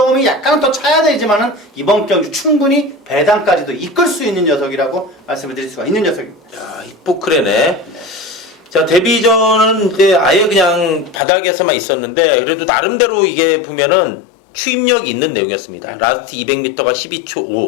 약간 더 차야 되지만은 이번 경주 충분히 배당까지도 이끌 수 있는 녀석이라고 말씀을 드릴 수가 있는 녀석입니다. 야, 히포크레네. 자, 데뷔전은 이제 아예 그냥 바닥에서만 있었는데 그래도 나름대로 이게 보면은 추임력이 있는 내용이었습니다. 라스트 200m가 12초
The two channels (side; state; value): right; drops out; at 11.2 s